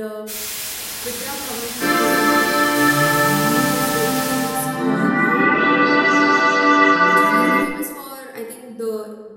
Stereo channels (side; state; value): both; identical; correlation 1.00